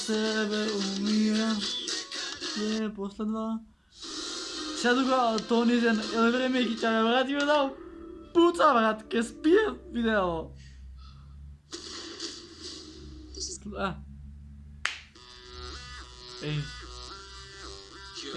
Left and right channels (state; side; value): identical; both; correlation 1.00